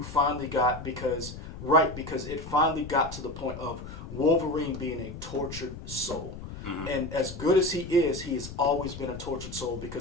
finally got because it finally got to the point of Wolverine being a tortured soul. And as good as he has always been a tortured soul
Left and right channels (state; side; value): noise; left; rumble, 11 dB below the sound